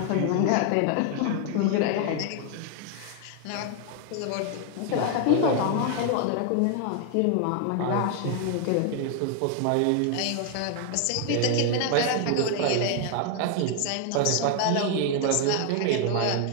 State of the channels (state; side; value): different; both; correlation 0.00